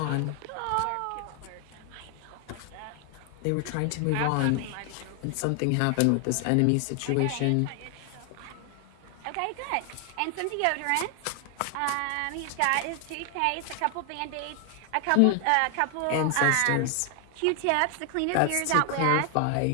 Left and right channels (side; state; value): both; different; correlation 0.00